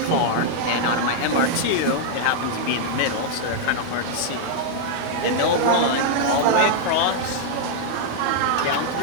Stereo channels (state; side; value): different; both; correlation -0.01